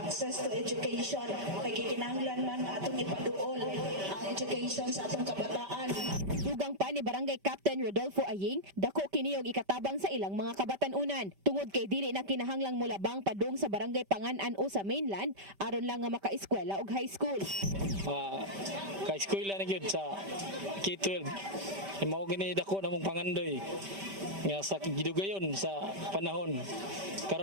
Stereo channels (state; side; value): late; left; 5.1 ms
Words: to education. Kay gikinahanglan man nga atong ipaduol ang education sa atong kabataan. Dugang pa ni Barangay Captain Rodolfo Aying, dako kini og ikatabang sa ilang mga kabatan-unan. Tungod kay dili na kinahanglang mulabang padung sa Barangay Pangan-an o sa mainland aron lang nga maka-eskwela og high school. Ka-eskwela na gyud sa K-12. Mao gini dako namong pangandoy nga sa gidugayon sa panahon